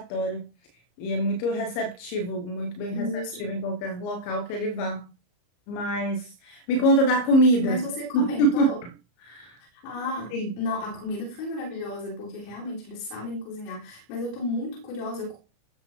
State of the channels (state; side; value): late; right; 34 ms